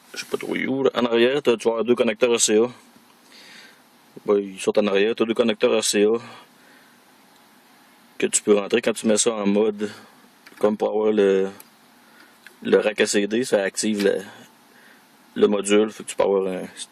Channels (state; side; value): identical; both; correlation 1.00